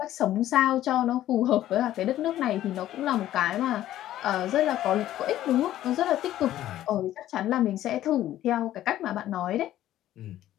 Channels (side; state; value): right; quieter; 13.2 dB